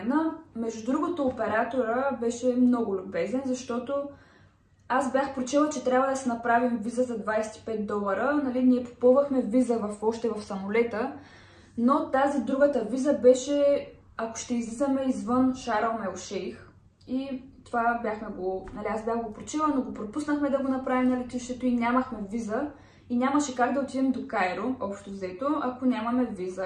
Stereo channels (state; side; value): identical; both; correlation 1.00